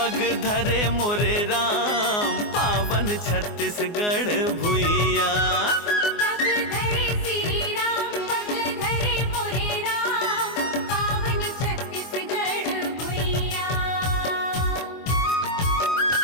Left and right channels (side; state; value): right; late; 24 ms